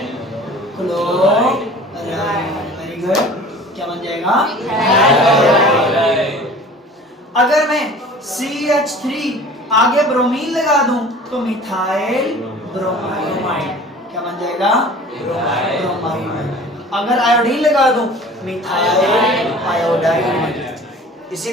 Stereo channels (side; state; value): both; normal; correlation 0.44